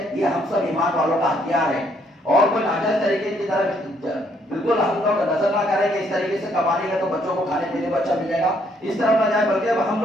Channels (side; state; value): both; normal; correlation 0.69